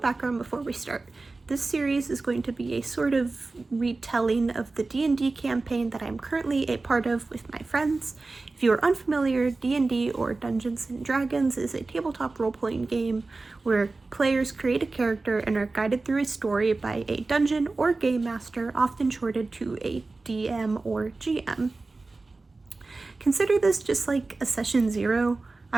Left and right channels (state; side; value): quieter; left; 3.5 dB